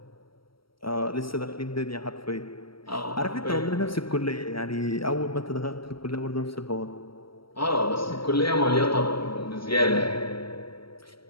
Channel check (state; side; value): late; right; 0.74 ms